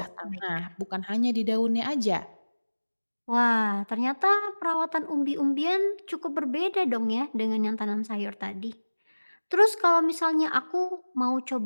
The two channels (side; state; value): both; inverted; correlation -1.00